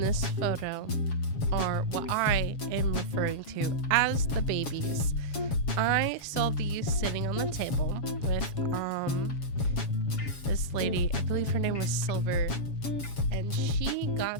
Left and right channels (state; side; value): late; right; 7.2 ms